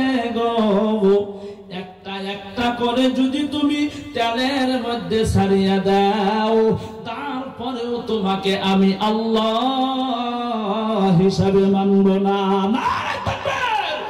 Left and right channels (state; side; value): identical; both; correlation 1.00